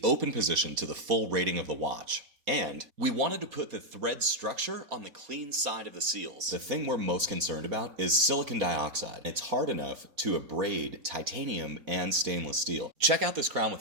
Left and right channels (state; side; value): late; left; 4.2 ms